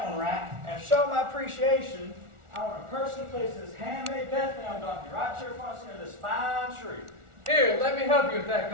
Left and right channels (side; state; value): left; late; 1.4 ms